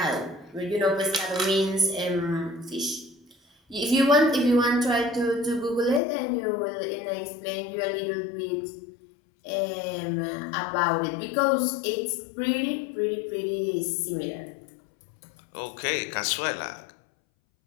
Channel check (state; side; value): drops out; right; at 6.0 s